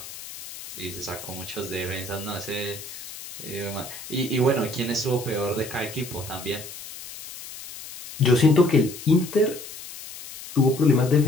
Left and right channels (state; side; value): noise; left; hiss, 13 dB below the sound